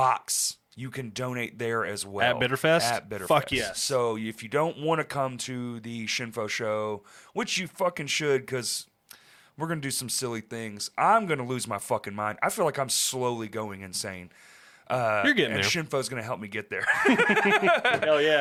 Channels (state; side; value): identical; both; correlation 1.00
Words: you can donate there as well. At Bitterfest? At Bitterfest. Fuck yes. So if you don't want to come to the Shinfo show, which you fucking should because we're going to do some silly things, I'm going to lose my fucking mind. I feel like I'm slowly going insane. You're getting there. And Shinfo's going to help me get there. Hell